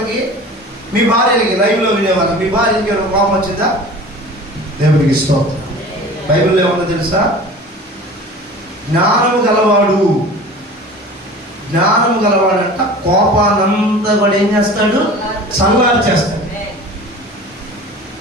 మీ భార్యలకి? లైవ్లో వినేవాళ్ళు, మీ భార్యకి కోపం వచ్చిందా? దేవునికి స్తోత్రం. బైబిల్లో ఏమన్నా తెలుసా? జ్ఞానము గలవాడంట కోపానంతా కూడా ఏం చేస్తాడు? చల్లారు చేస్తాడు.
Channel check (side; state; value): both; normal; correlation 0.40